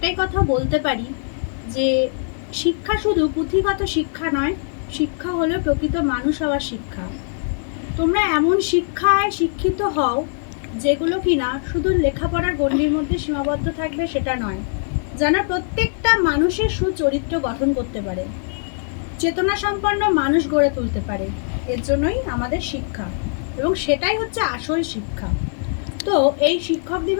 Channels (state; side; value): silent; right; digital silence